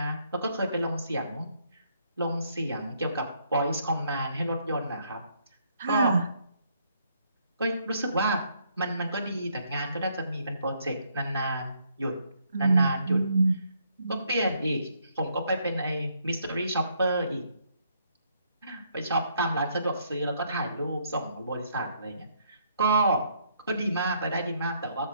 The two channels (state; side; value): inverted; both; correlation -0.71